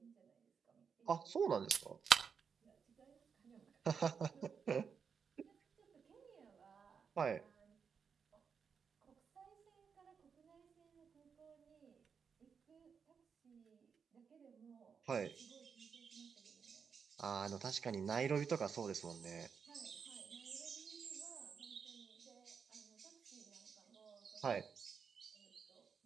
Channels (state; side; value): quieter; left; 6.3 dB